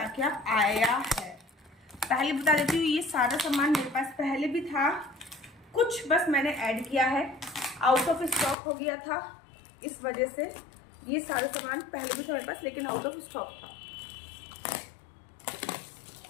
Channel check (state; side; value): drops out; right; at 8.6 s